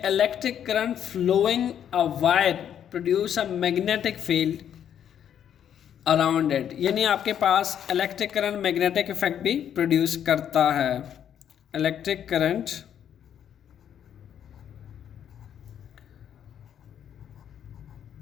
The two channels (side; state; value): right; quieter; 9.4 dB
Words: electric current flowing a wire produce a magnetic field around it, यानी आपके पास इलेक्ट्रिक करंट मैग्नेटिक इफेक्ट भी प्रोड्यूस करता है। इलेक्ट्रिक करंट